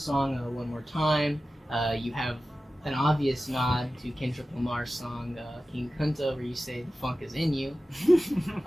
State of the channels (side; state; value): both; normal; correlation 0.95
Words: "One More Time," you have an obvious nod to Kendrick Lamar's song "King Kunta," where you say "the funk is in you."